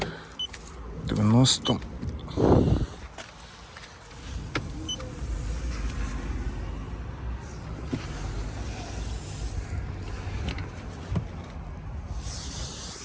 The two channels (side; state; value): both; identical; correlation 1.00